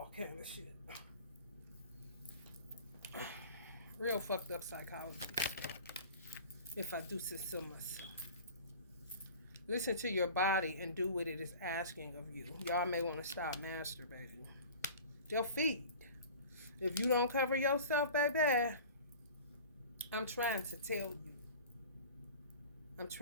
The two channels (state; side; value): inverted; both; correlation -0.40